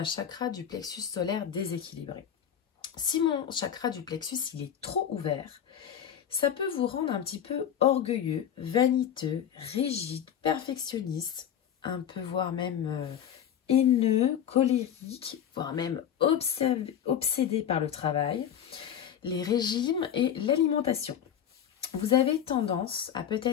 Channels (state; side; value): quieter; right; 9.3 dB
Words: chakra du plexus solaire déséquilibré? Si mon chakra du plexus il est trop ouvert, ça peut vous rendre un petit peu orgueilleux, vaniteux, rigide, perfectionniste, un peu voire même haineux, colérique, voire même obsédé par le travail, les régimes et l'alimentation. Vous avez tendance à